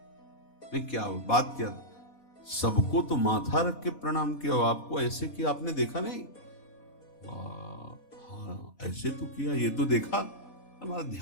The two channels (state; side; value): late; right; 4.2 ms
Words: नहीं, क्या बात क्या? सबको तो माथा रख के प्रणाम किया, आपको ऐसे किया, आपने देखा नहीं? हाँ, ऐसे तो किया, ये तो देखा, हमारा